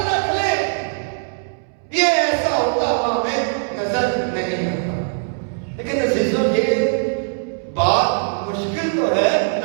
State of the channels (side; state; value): left; silent; 65 dB below the other